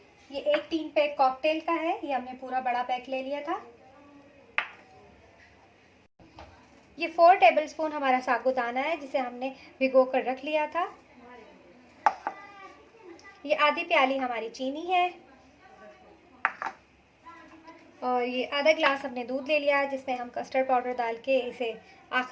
ये एक 3 पैक कॉकटेल का है। ये हमने पूरा बड़ा पैक ले लिया था। ये 4 टेबलस्पून हमारा साबूदाना है जिसे हमने भिगो कर रख लिया था। ये आधी प्याली हमारी चीनी है और ये आधा ग्लास हमने दूध ले लिया है जिसमें हम कस्टर्ड पाउडर डाल के इसे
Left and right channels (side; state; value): both; identical; correlation 1.00